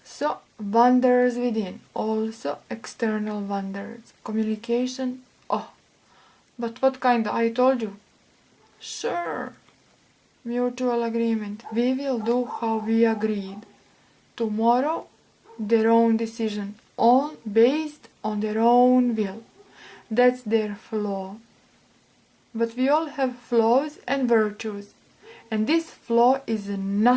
So, wonders within. Also, external wonders. Communication. Oh, but what kind? I told you. Sure. Mutual agreement. We will do how we agreed. Tomorrow, their own decision. Based on their own will. That's their flaw. But we all have flaws and virtues. And this flaw is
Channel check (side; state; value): both; identical; correlation 1.00